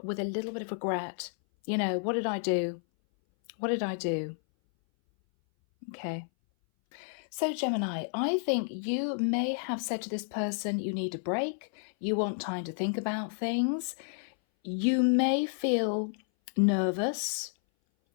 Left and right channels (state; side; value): silent; right; 57 dB below the other